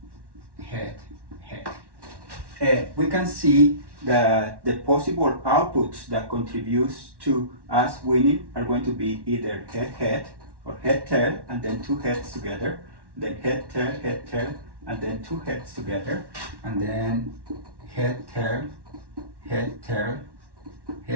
head, head. We can see that the possible outputs that contributes to us winning are going to be either head, head, or head, tail, and then 2 heads together, then head, tail, and then 2 heads together, and then head, tail, head,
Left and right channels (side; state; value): left; late; 1.1 ms